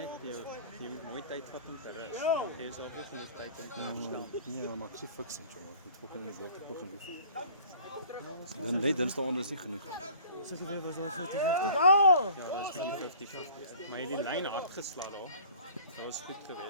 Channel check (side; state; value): both; inverted; correlation -0.48